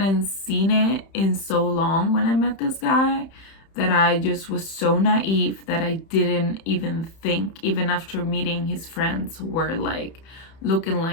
seen it in so long when I met this guy that I just was so naive that I didn't even think, even after meeting his friends who were like looking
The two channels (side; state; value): right; late; 31 ms